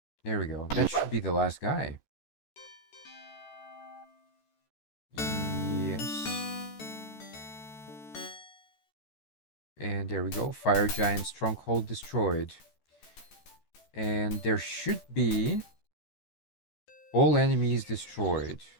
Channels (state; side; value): late; right; 14 ms